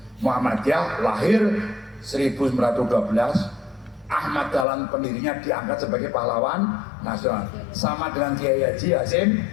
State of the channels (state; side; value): drops out; right; at 4.7 s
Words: Muhammadiyah lahir 1912, Ahmad Dahlan pendirinya diangkat sebagai pahlawan nasional, sama dengan Kiai Haji Hasyim